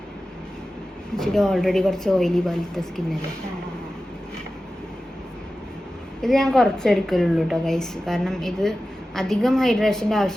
ഇച്ചിരി ഓൾറെഡി കുറച്ച് ഓയിലി പോലത്തെ സ്കിന്നല്ലേ. ഇത് ഞാൻ കുറച്ചെടുക്കലുള്ളൂ കേട്ടോ ഗൈസ്, കാരണം ഇത് അധികം ഹൈഡ്രേഷൻ്റെ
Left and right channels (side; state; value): both; normal; correlation 0.94